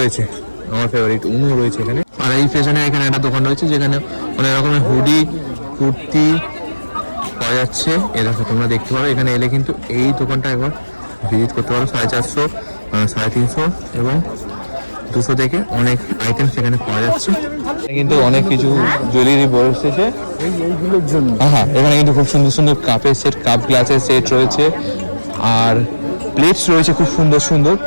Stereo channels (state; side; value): inverted; both; correlation -1.00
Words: আমার ফেভারিট উনো রয়েছে এখানে। আর এই পেছনে এখানে একটা দোকান রয়েছে যেখানে অনেক রকমের হুডি, কুর্তি পাওয়া যাচ্ছে। এ দেখো, তোমরা দেখতে পারো। এখানে এলে কিন্তু এই দোকানটা একবার ভিজিট করতে পারো। 450, 350 এবং 200 থেকে অনেক আইটেম সেখানে পাওয়া যাচ্ছে। কিন্তু অনেক কিছু জুয়েলারি বসেছে এইগুলোর জন্য। হ্যাঁ, এখানে কিন্তু খুব সুন্দর সুন্দর কাপের সেট, কাপ গ্লাসের সেট রয়েছে। আর প্লেটস রয়েছে খুব সুন্দর সুন্দর